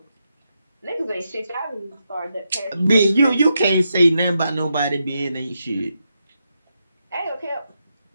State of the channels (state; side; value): inverted; both; correlation -0.84